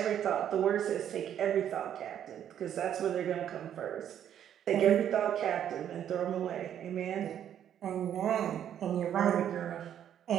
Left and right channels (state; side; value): quieter; left; 9.9 dB